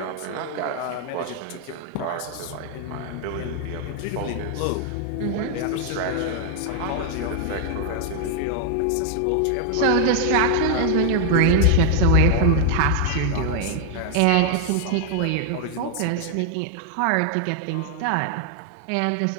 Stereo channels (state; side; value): different; both; correlation 0.00